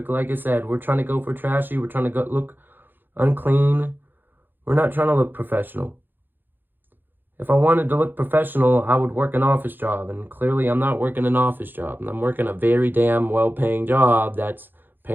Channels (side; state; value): left; late; 0.094 ms